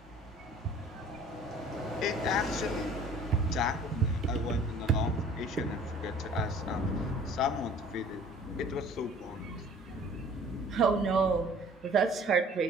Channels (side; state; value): both; normal; correlation 0.50